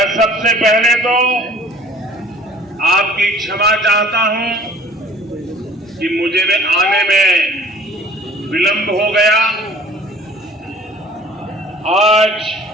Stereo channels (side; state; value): both; normal; correlation 0.50